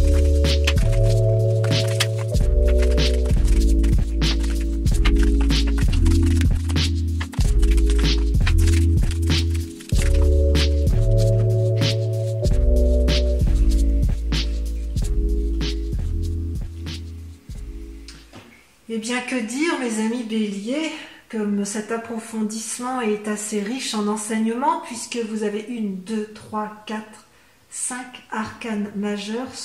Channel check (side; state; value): both; identical; correlation 1.00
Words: Eh bien, que dire, mes amis béliers, comme cet approfondissement est assez riche en enseignements, puisque vous avez 1, 2, 3, 4, 5 arcanes majeurs